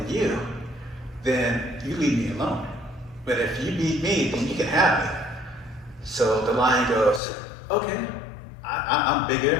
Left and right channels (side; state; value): right; drops out; at 7.2 s